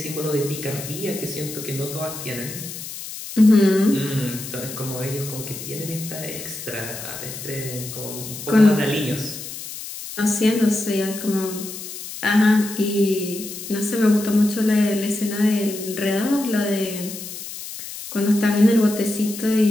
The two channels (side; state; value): left; noise; hiss, 10 dB below the sound